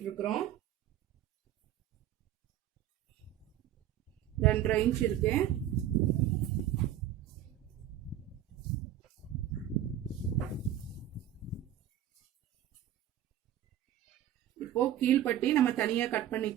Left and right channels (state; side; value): quieter; left; 11.5 dB